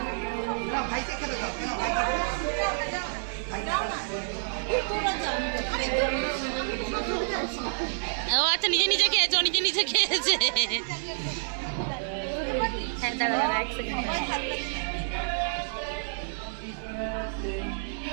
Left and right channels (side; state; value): left; silent; 59 dB below the other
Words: ও আচ্ছা, নিজে নিজে খেয়েছে, ও নিজে নিজে খেয়েছে। হ্যাঁ দাঁড়া দাঁড়া এক সেকেন্ড।